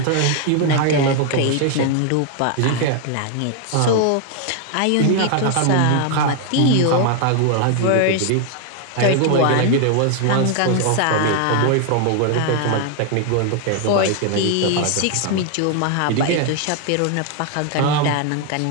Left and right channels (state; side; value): different; both; correlation 0.00